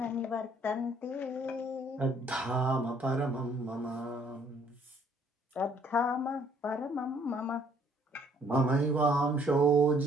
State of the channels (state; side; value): normal; both; correlation 0.63